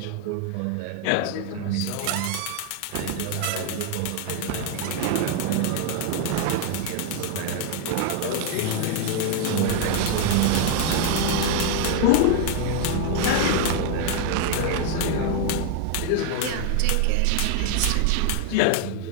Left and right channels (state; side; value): different; both; correlation 0.00